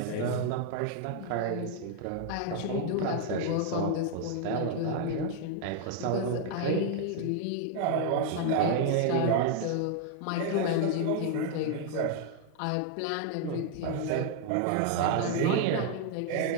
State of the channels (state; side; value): different; both; correlation 0.00